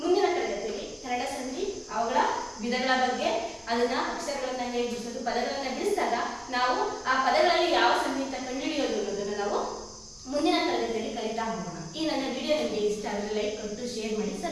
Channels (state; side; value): identical; both; correlation 1.00